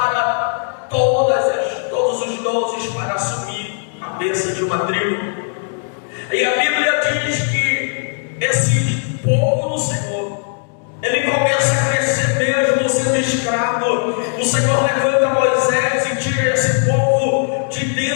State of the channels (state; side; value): silent; right; 61 dB below the other